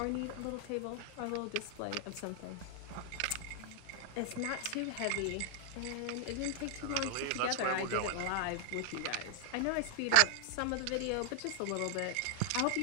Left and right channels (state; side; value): different; both; correlation 0.00